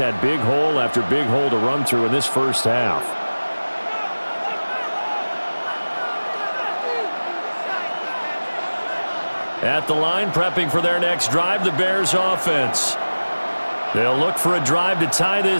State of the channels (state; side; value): inverted; both; correlation -1.00